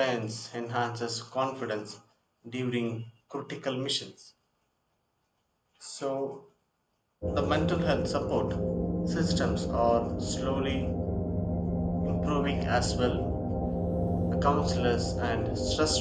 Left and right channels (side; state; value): both; identical; correlation 1.00